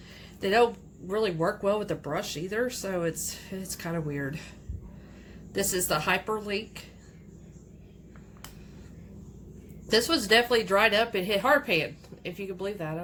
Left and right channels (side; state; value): both; identical; correlation 1.00